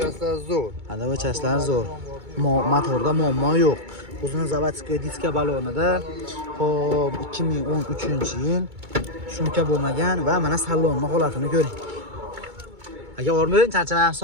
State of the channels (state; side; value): late; left; 2.2 ms